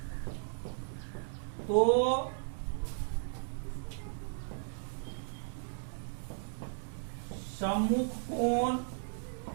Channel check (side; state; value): left; silent; 54 dB below the other